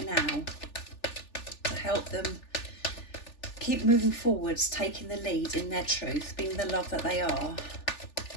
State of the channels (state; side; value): late; right; 3.4 ms